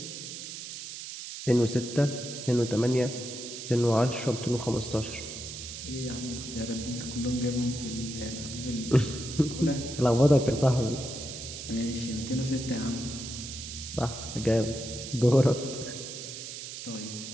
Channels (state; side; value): noise; right; hiss, 9 dB below the sound